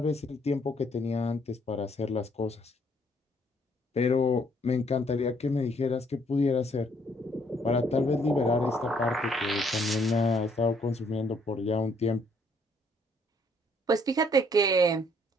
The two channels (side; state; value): both; normal; correlation 0.67